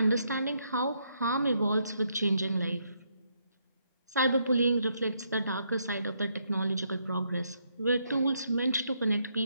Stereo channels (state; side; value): inverted; both; correlation -0.76